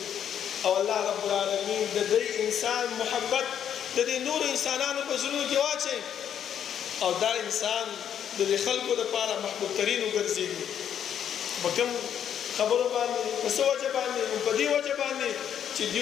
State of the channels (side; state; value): right; quieter; 9.1 dB